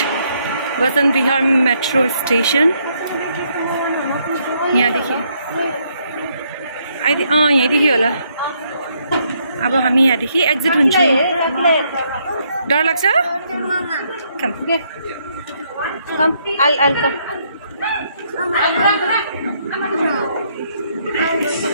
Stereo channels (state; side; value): inverted; both; correlation -0.72